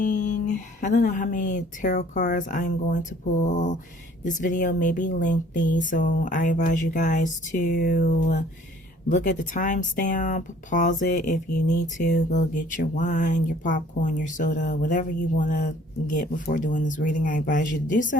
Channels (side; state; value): both; normal; correlation 0.55